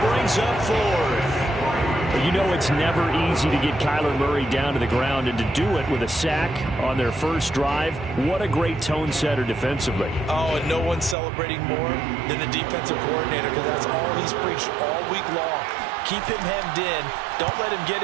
brings up 4th. You know it's never easy to get Kyler Murray down to the ground, and to do it with a sack on their first drive, what a great tone setter defensively. Oh, and no one's celebrating more than the defensive coordinator, because that's all he's preached all week long. Keep him hemmed in. Don't let him get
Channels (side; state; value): left; drops out; at 11.2 s